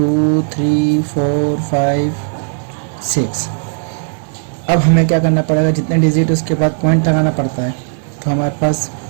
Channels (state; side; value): silent; left; 67 dB below the other